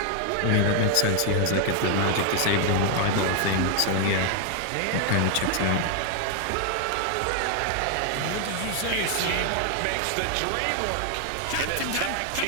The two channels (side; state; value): both; different; correlation 0.00